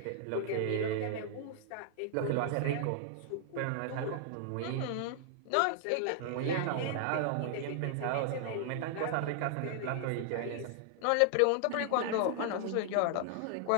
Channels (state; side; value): different; both; correlation 0.00